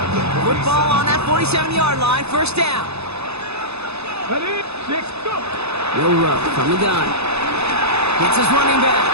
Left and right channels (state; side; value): late; left; 0.79 ms